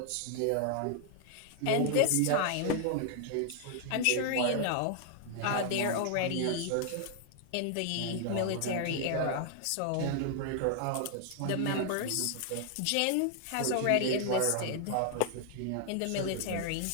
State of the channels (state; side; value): different; both; correlation 0.00